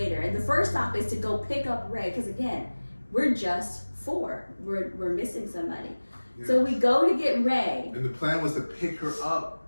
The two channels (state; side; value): inverted; both; correlation -1.00